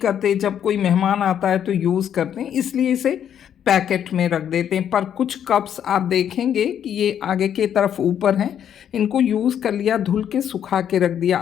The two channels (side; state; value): right; quieter; 9.3 dB